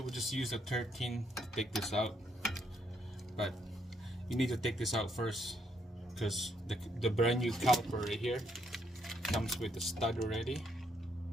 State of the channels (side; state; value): both; normal; correlation 0.74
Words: just use a 13 to take this out, but you need to take this out first because the brand new caliper right here comes with the stud already.